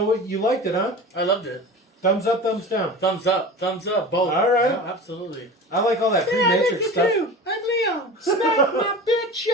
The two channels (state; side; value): normal; both; correlation 0.34